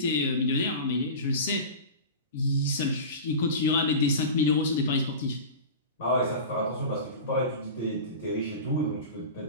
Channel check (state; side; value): inverted; both; correlation -0.30